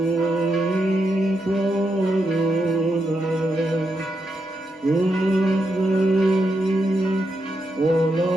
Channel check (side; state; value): both; normal; correlation 0.83